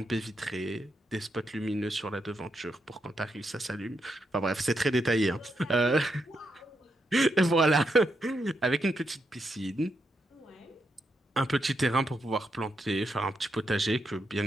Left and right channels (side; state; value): both; normal; correlation 0.82